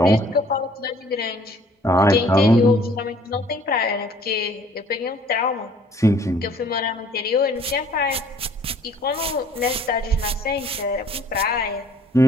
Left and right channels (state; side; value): normal; both; correlation 0.57